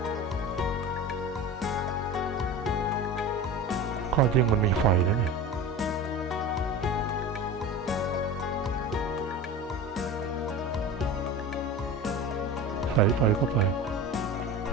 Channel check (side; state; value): both; normal; correlation 0.31